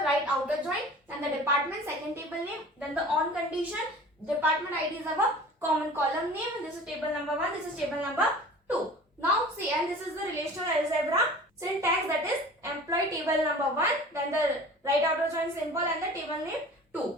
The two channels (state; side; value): normal; both; correlation 0.42